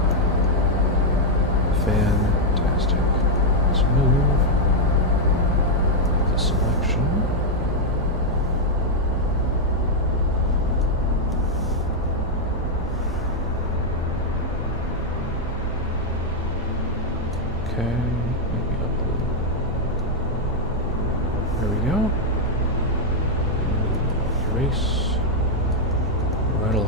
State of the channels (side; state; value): both; normal; correlation -0.01